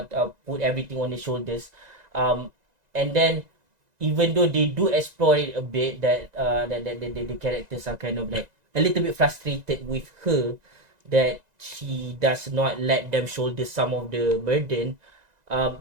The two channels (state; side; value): late; left; 1.9 ms